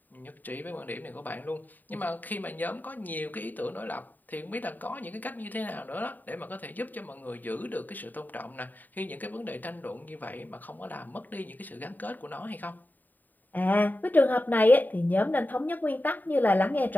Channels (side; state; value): right; late; 0.087 ms